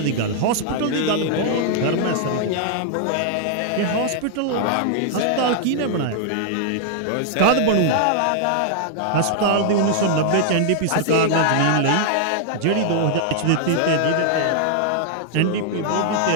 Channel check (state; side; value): different; both; correlation -0.01